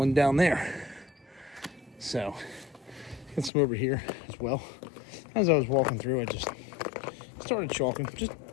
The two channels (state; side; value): drops out; right; at 3.5 s